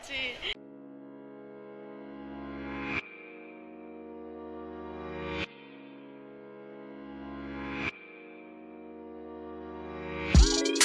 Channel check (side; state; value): both; identical; correlation 1.00